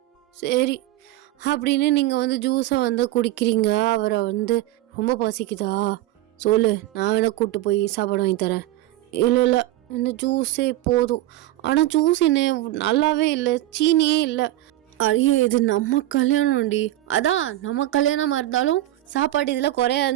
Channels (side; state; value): left; quieter; 15.2 dB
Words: சரி அப்படின்னு நீங்கள் ஜூஸை குடிக்கிறீங்க. அவரை ரொம்ப பசிக்குதா சொல்லு, நான் வேணா கூப்பிட்டு போய் சாப்பாடு வாங்கி தரேன். இல்லை இந்த ஜூஸே போதும். ஆனால் ஜூஸ் என்ன நல்லாவே இல்லை, சீனியே இல்லை. ஐயோ இது நம்ம கல்யாணம்டி. அதான் நம்ம கல்யாணமாக இருந்தாலும் சாப்பாடு இதில் குறையா